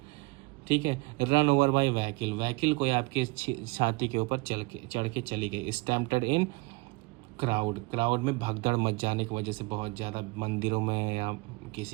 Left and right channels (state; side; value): quieter; left; 26.0 dB